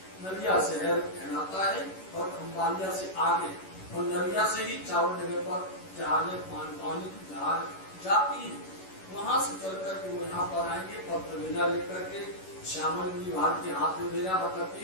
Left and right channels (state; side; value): late; right; 11 ms